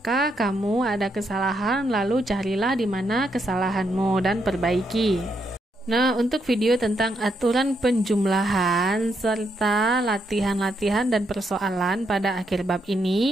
kamu ada kesalahan, lalu carilah di mana kesalahanmu dan perbaiki. Nah, untuk video tentang aturan penjumlahan serta latihan-latihan dan persoalan pada akhir bab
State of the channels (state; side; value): normal; both; correlation 0.78